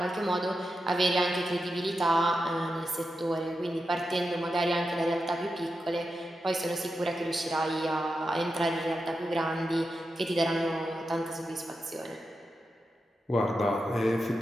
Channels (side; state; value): both; normal; correlation 0.89